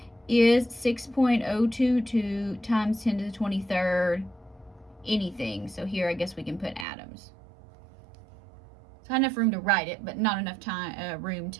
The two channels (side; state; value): left; drops out; at 6.9 s